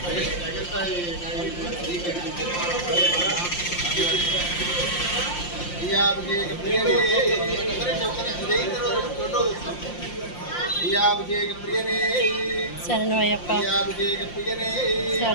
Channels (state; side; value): late; right; 5.7 ms